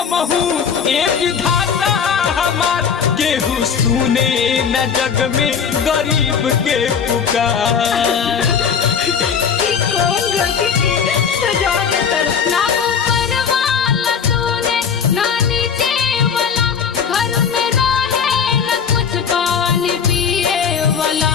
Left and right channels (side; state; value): right; quieter; 6.9 dB